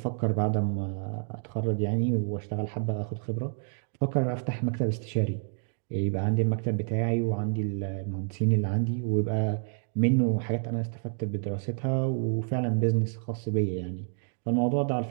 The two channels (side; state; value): left; silent; 59 dB below the other